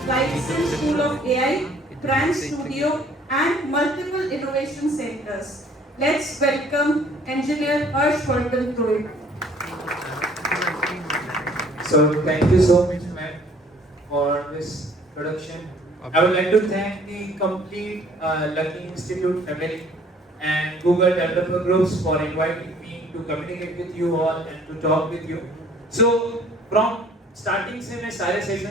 like SIM School of AI, Brand Studio, and multiple innovation centers. Let's welcome Engineer Harshvardhan Rohit. So thank you so much, ma'am, for this production. I would like to thank the complete Lucky Institute family and Google Developer Groups for inviting me to communicate with you all and to talk with you. So from starting से मैं सारे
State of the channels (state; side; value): normal; both; correlation 0.57